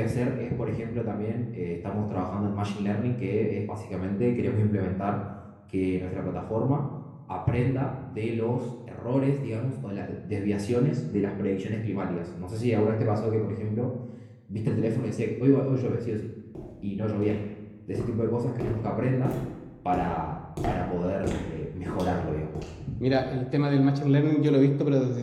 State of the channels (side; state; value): both; identical; correlation 1.00